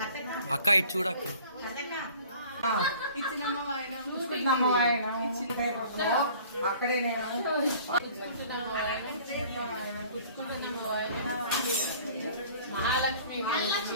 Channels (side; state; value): both; inverted; correlation -0.50